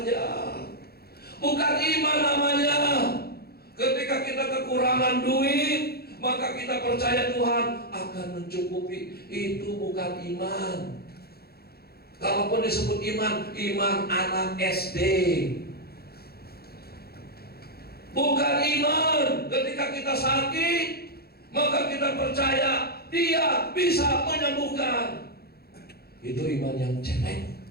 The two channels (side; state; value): right; late; 0.46 ms